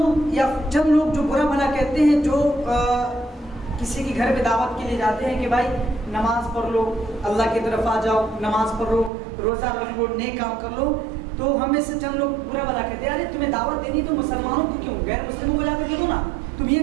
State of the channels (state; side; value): drops out; left; at 9.1 s